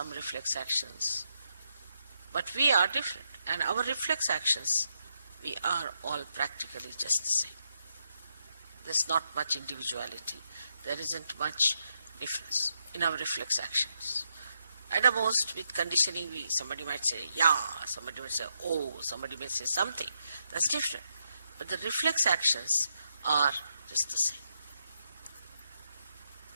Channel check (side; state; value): both; inverted; correlation -0.81